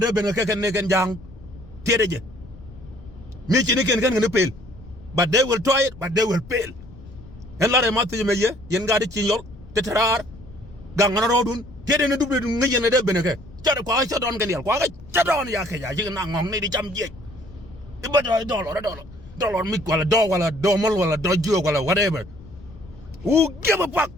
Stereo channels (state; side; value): noise; left; rumble, 19 dB below the sound